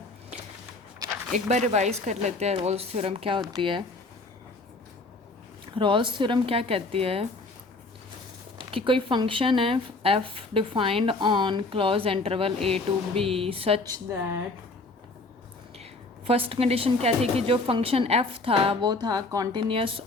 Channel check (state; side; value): quieter; right; 3.3 dB